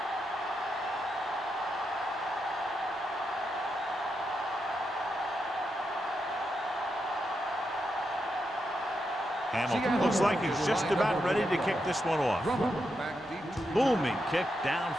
Hamilton looks like he's just about ready to kick this one off. Booming kick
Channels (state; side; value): normal; both; correlation 0.84